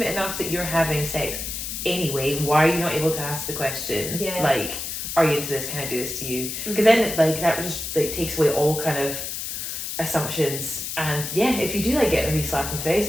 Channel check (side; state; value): left; noise; hiss, 5 dB below the sound